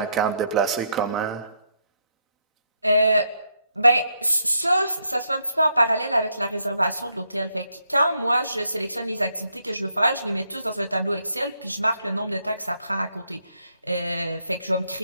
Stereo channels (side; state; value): both; inverted; correlation -0.76